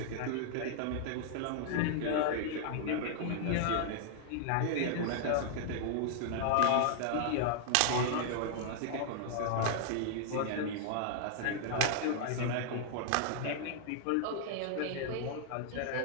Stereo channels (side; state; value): both; different; correlation -0.01